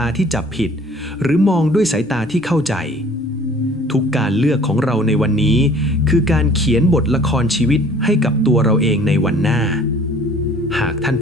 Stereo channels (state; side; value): normal; both; correlation 0.52